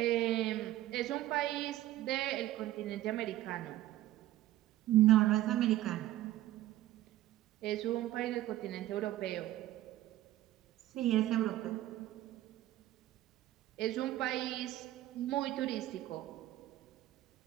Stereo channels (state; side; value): quieter; left; 14.7 dB